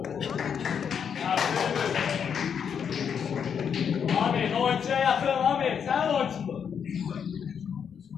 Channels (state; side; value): quieter; right; 7.4 dB